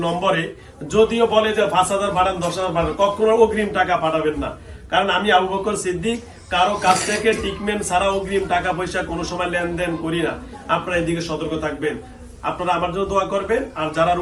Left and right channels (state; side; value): identical; both; correlation 1.00